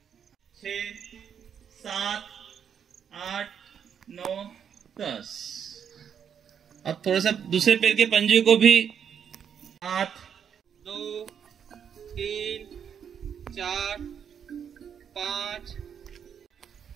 6 7 8 9 10। अब थोड़ा सा दूसरे पैर के पंजे को भी 8 2 3 4 5,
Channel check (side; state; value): left; quieter; 8.0 dB